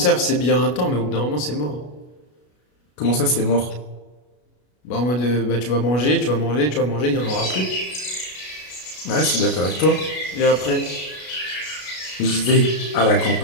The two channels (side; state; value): right; late; 33 ms